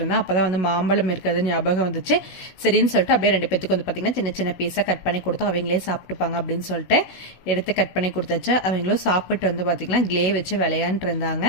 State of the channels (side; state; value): right; late; 16 ms